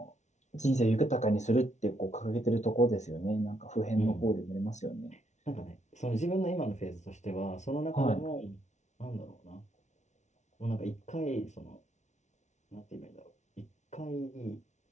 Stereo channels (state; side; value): late; right; 0.33 ms